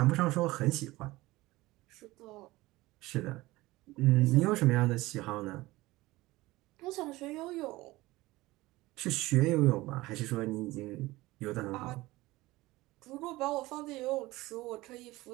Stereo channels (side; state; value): left; quieter; 19.3 dB